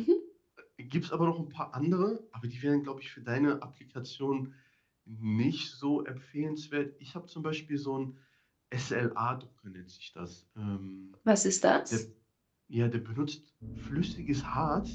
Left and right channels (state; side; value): identical; both; correlation 1.00